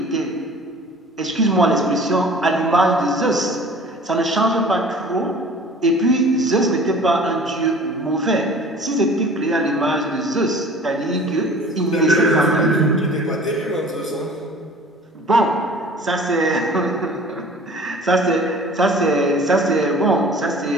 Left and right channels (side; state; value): both; normal; correlation 0.46